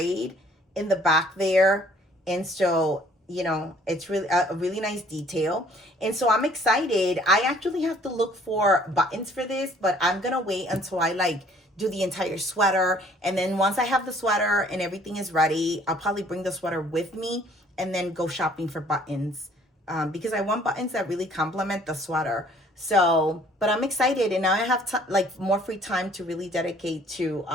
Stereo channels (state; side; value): normal; both; correlation 0.58